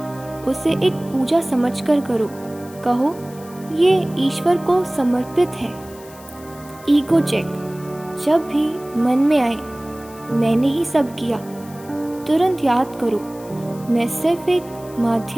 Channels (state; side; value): noise; left; hiss, 22 dB below the sound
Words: उसे एक पूजा समझकर करो। कहो, ये ईश्वर को समर्पित है। Ego check. जब भी मन में आए मैंने ही सब किया, तुरंत याद करो, मैं सिर्फ एक